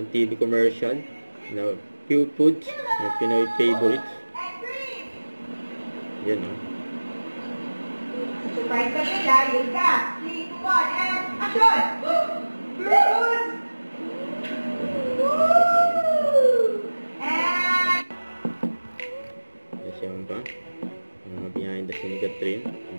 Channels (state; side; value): inverted; both; correlation -1.00